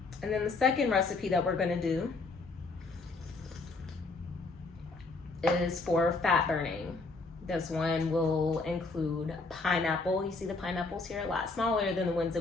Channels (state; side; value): quieter; right; 3.7 dB